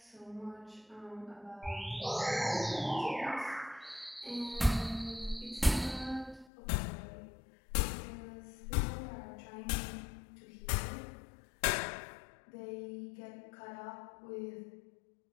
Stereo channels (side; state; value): right; drops out; at 6.5 s